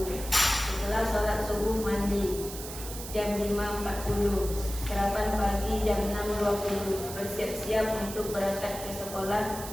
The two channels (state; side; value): noise; right; hiss, 10 dB below the sound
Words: Setelah sholat subuh mandi jam 5.40. Sarapan pagi jam 6.20. Bersiap-siap untuk berangkat ke sekolah